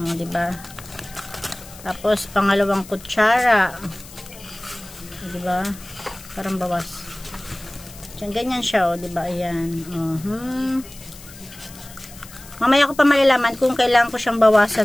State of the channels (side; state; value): left; noise; hiss, 18 dB below the sound